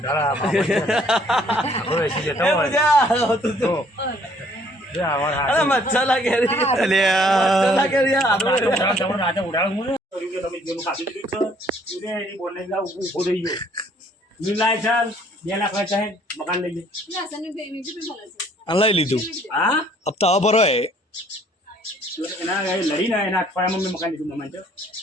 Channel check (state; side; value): normal; both; correlation 0.61